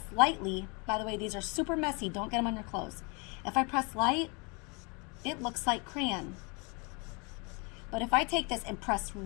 lightly, by the way, these are super messy, don't get them on your clothes. If I press light, it looks like crayon. But if I take this and press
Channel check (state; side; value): quieter; right; 31.3 dB